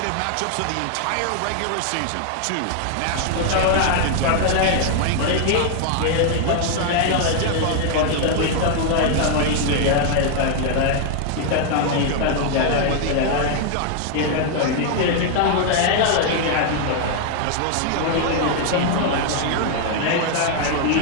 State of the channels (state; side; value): different; both; correlation 0.00